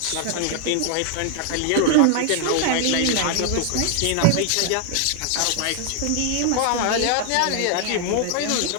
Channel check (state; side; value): different; both; correlation 0.00